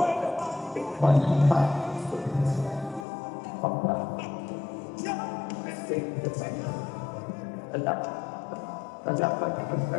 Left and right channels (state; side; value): drops out; right; at 3.1 s